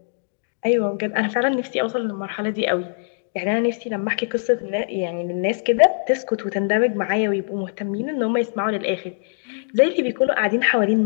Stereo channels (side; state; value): right; silent; digital silence